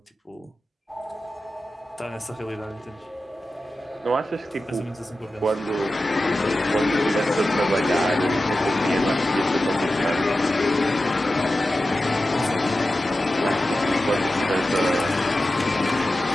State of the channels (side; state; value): both; normal; correlation 0.93